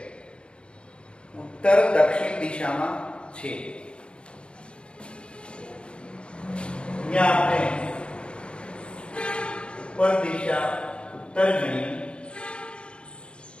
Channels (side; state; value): right; late; 0.055 ms